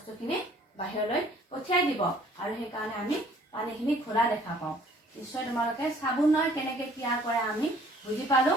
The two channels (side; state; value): both; normal; correlation 0.56